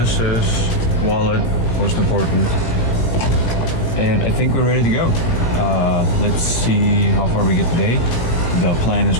wallet, most important, and I think we're ready to go. Let's see how far we get today. The plan is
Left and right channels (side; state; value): right; late; 18 ms